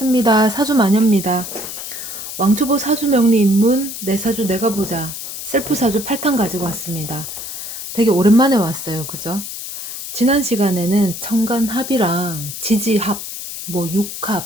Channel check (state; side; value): noise; left; hiss, 8 dB below the sound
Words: 사주마녀입니다. 왕초보 사주명리 입문 내 사주 내가 보자 셀프 사주 8탄 가지고 왔습니다. 되게 오랜만에 왔어요. 그죠? 지난 시간에는 천간합이랑 지지합, 뭐